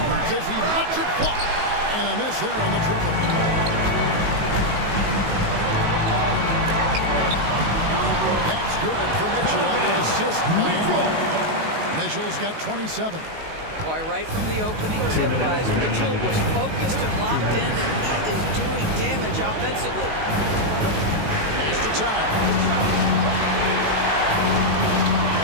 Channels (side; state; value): left; late; 19 ms